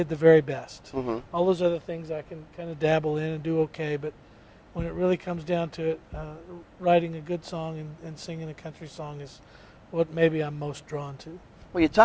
the very best. Mm-hmm. All those other things I can kind of dabble in and do okay, but when it really comes down to it, writing a good song and singing a country song is what maybe I'm most drawn to. Well, you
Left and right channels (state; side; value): identical; both; correlation 1.00